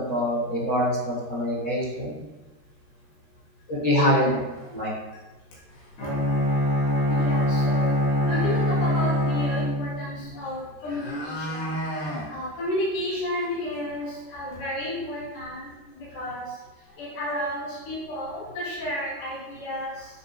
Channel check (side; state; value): right; late; 13 ms